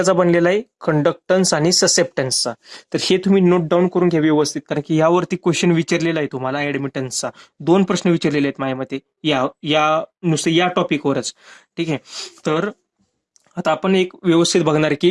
बनलेला आहे, कंडक्टन्स आणि ससेप्टन्सचा. तर हे तुम्ही नोट डाऊन करून घ्या व्यवस्थित, कारण की यावरती क्वेश्चन विचारलेला आहे तुम्हाला ऍडमिटन्सचा. 2 प्रश्न विचारलेले आहेत माझ्या मते या या नुसते या टॉपिकवरच. ठीक आहे, तर आता आपण एक व्यवस्थित बघणार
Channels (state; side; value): identical; both; correlation 1.00